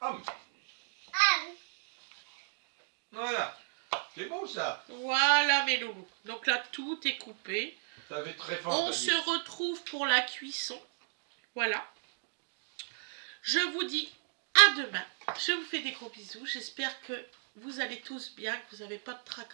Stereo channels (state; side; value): silent; left; digital silence